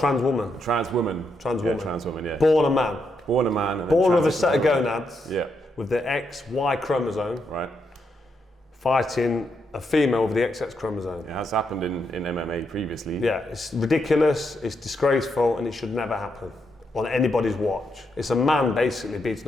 woman? Trans woman. Trans woman. Yeah, trans woman, yeah. Born a man. Born a man. And born with a set of gonads. Yeah. With the XY chromosome. Right. Fighting a female with the XX chromosome. It has happened in MMA previously. Yeah, it's ridiculous, it's disgraceful, and it should never happen on anybody's watch. It's a man basically beating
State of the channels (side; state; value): both; normal; correlation 0.80